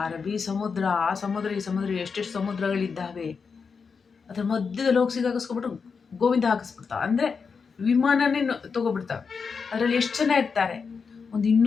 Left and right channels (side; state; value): right; quieter; 5.5 dB